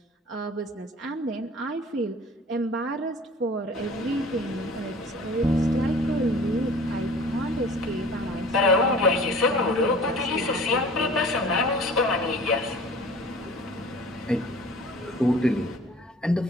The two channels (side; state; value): both; normal; correlation 0.45